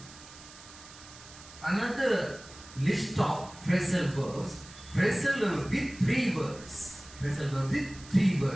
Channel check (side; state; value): right; noise; hiss, 18 dB below the sound